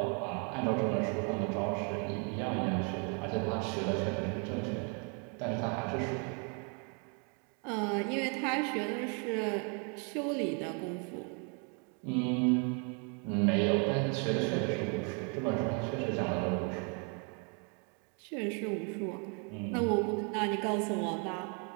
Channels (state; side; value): quieter; left; 37.5 dB